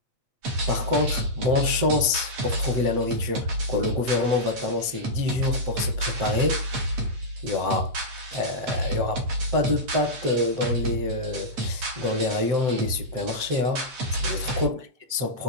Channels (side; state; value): left; late; 7.8 ms